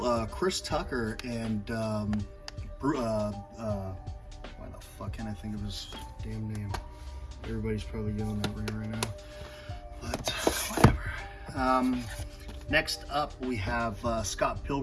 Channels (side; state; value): both; identical; correlation 1.00